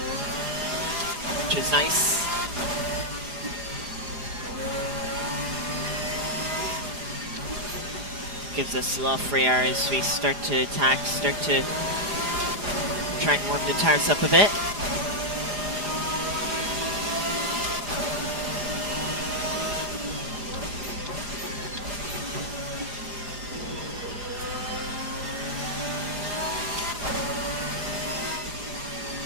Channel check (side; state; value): left; late; 4.9 ms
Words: which is nice. Gives us a lot of free air as we start to attack, start to try and warm the tires up a bit.